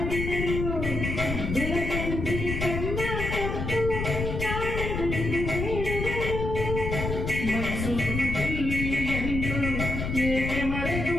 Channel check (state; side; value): noise; left; rumble, 3 dB below the sound